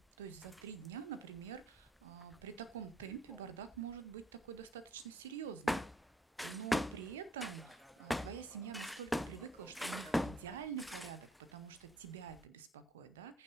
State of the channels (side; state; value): both; normal; correlation 0.64